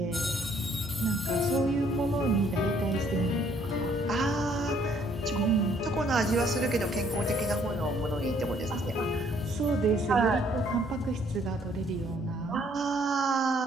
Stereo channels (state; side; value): normal; both; correlation 0.64